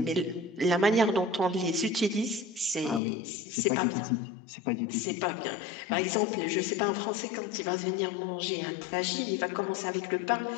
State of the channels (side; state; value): right; drops out; at 3.0 s